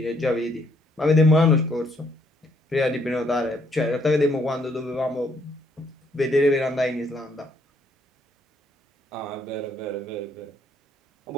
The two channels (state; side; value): normal; both; correlation 0.69